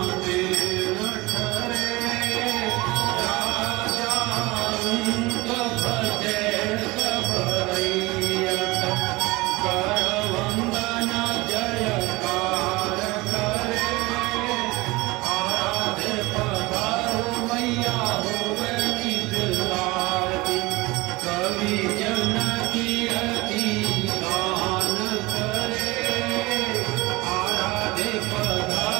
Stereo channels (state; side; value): quieter; left; 22.1 dB